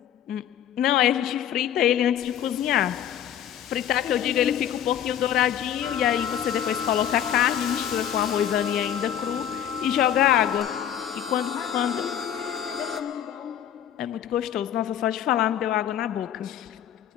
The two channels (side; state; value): right; quieter; 10.1 dB